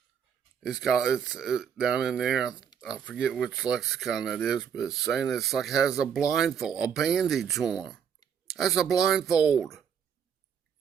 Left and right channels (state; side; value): quieter; left; 7.7 dB